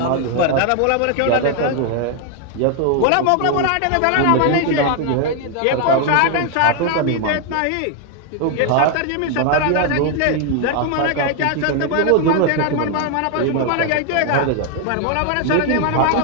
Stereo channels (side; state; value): both; different; correlation 0.00